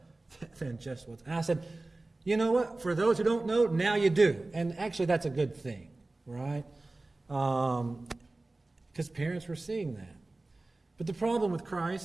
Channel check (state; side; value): quieter; left; 3.0 dB